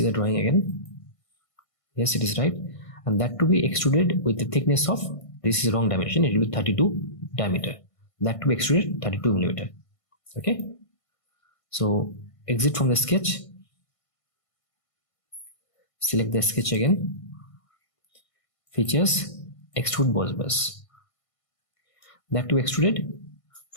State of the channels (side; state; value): right; late; 1.5 ms